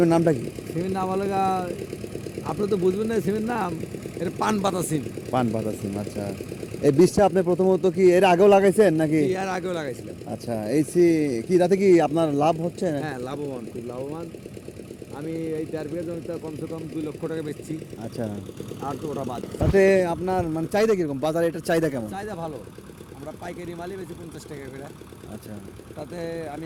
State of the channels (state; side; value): identical; both; correlation 1.00